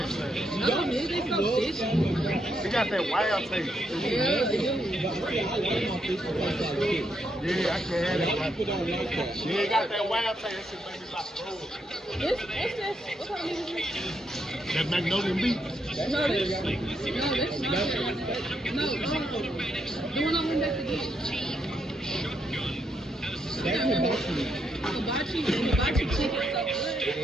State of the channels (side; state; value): both; normal; correlation 0.78